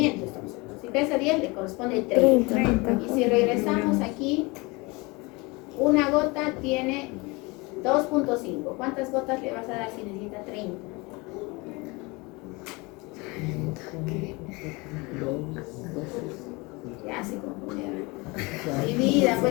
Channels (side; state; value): right; quieter; 25.7 dB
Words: estamos hablando. Si pesa 10, le corresponde 30. 30. Y si regresamos aquí, una gota tiene 2.5. ¿Cuántas gotas le vas a dar si necesita 30? Ya se confundieron. Divida,